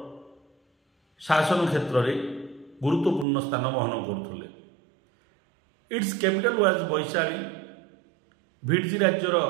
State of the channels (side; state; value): left; drops out; at 3.2 s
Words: शासन क्षेत्र में गुरुत्वपूर्ण स्थान बहन करते। It's capital was Vaishali. Vajji राज्यर